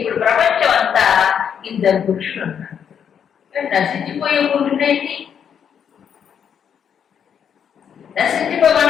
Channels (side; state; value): right; quieter; 8.0 dB